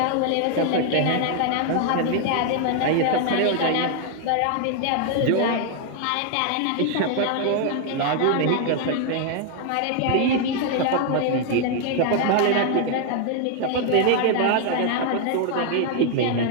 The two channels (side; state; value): both; different; correlation 0.00